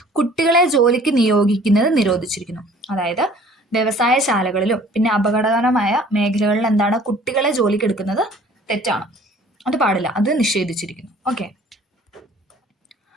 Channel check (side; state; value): both; normal; correlation 0.52